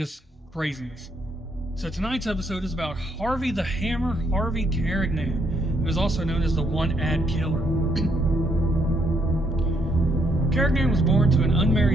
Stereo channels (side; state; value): both; normal; correlation 0.72